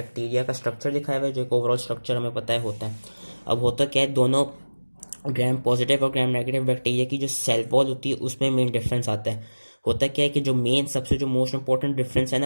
का स्ट्रक्चर दिखाया हुआ है, जो एक ओवरऑल स्ट्रक्चर हमें पता है होता है। अब होता क्या है, दोनों ग्राम पॉजिटिव और ग्राम नेगेटिव बैक्टीरिया की जो सेल वॉल होती है उसमें मेन डिफरेंस आता है। होता क्या है कि जो मेन सबसे जो मोस्ट इंपॉर्टेंट डिफरेंस है ना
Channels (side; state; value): both; inverted; correlation -1.00